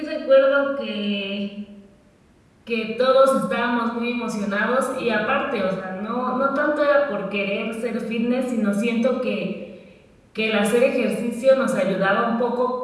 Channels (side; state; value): both; identical; correlation 1.00